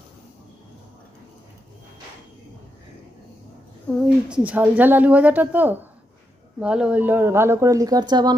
ওই ঝাল ঝাল আলু ভাজাটা তো ভালো হইলো, ভালো করে লিকার চা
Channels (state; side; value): normal; both; correlation 0.83